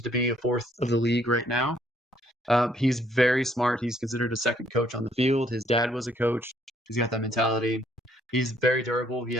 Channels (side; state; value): both; normal; correlation 0.67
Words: to be a 4th of the league right now. He's very smart. He's considered a second coach on the field. His dad was a coach. He's got that mentality. He's very durable. He